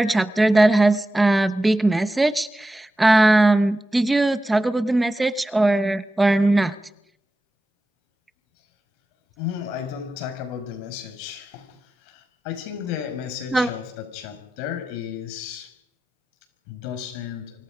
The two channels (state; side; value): normal; both; correlation 0.93